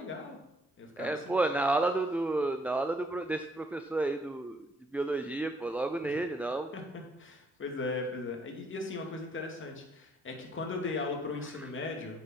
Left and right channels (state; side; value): normal; both; correlation 0.68